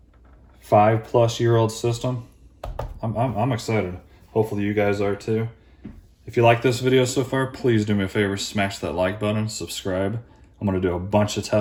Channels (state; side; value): identical; both; correlation 1.00